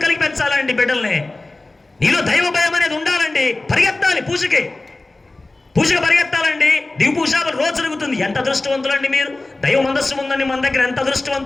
కలిగి పెంచాలండి బిడ్డల్ని. నీలో దైవ భయం అనేది ఉండాలండి. పరిగెత్తాలి పూజకి పరిగెత్తాలండి. దివు పూజ రోజు జరుగుతుంది. ఎంత అదృష్టవంతులండి మీరు. దైవ మందస్సు ఉందండి మన దగ్గర, ఎంత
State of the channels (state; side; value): quieter; right; 3.0 dB